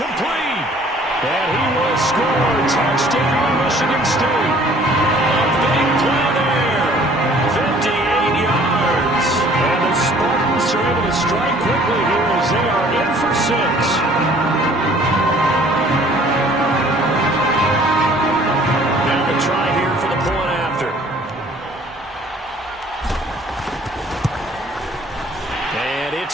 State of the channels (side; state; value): both; normal; correlation 0.55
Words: And he will score. Touchdown, Michigan State. A big play there. 58 yards. And the Spartans are able to strike quickly here as they are in for 6. Now the try here for the point after. And